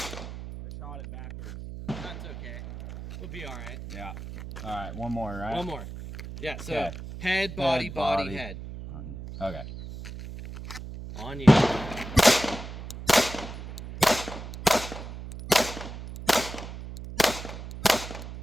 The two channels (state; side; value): noise; right; hum, 10 dB below the sound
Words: shot it backwards. That's okay. We'll be all right. Yeah. All right, one more, right? One more. Yeah, so Okay. head, body, Head, body, body. head. Okay. On you. Nice.